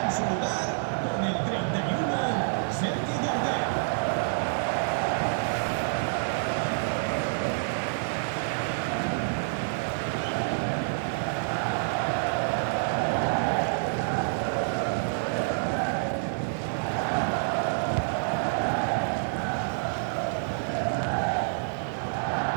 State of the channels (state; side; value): silent; left; digital silence